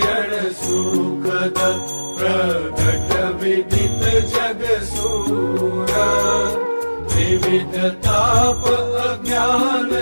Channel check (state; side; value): inverted; both; correlation -1.00